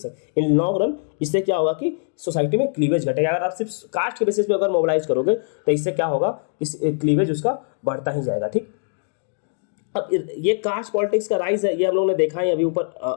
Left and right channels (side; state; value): right; silent; digital silence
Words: इन लॉन्ग रन इससे क्या होगा कि सोसाइटी में क्लीवेज घटेगा। अगर आप सिर्फ कास्ट के बेसिस पे अगर मोबिलाइज करोगे तो इससे क्या होगा कि क्लीवेज उसका बढ़ता ही जाएगा। ठीक, अब ये कास्ट पॉलिटिक्स का राइज है, ये हम लोगों ने देखा है। अभी ऊपर